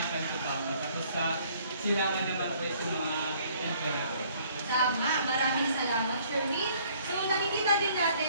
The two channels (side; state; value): both; inverted; correlation -0.60